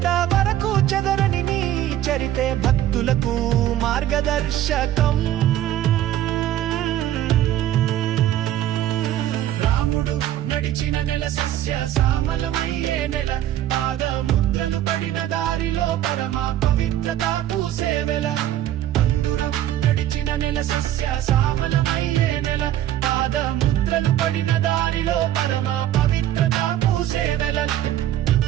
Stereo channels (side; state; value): left; quieter; 12.5 dB